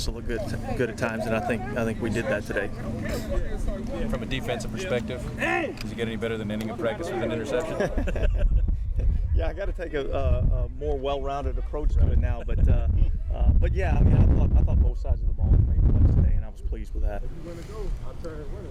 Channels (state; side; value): identical; both; correlation 1.00